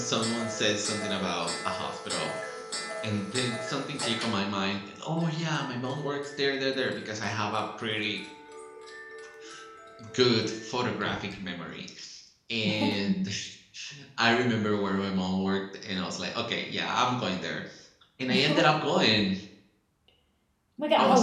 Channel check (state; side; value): identical; both; correlation 1.00